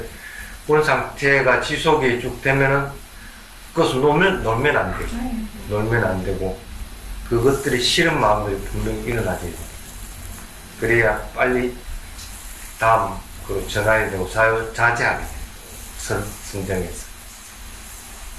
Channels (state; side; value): identical; both; correlation 1.00